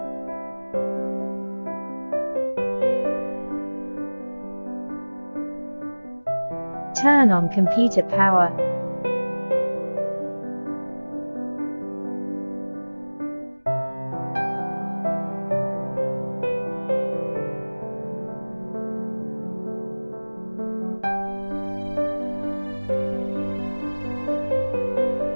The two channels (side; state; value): both; inverted; correlation -1.00